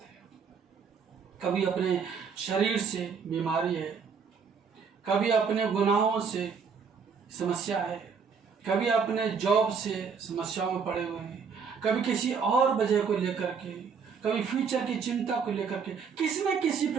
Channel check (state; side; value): quieter; left; 6.0 dB